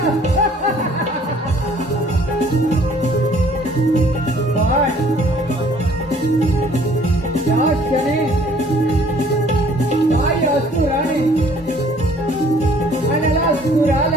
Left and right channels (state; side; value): normal; both; correlation 0.57